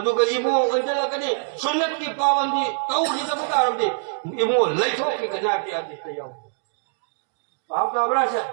इबो अंजला कने सुन्नत की पाबंदी तौहीद बकारम दे इबो लैथो की कना के आदेश ले जाओ आप काबरा से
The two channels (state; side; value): silent; left; digital silence